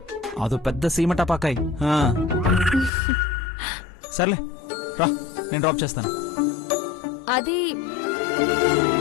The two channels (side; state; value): right; drops out; at 2.9 s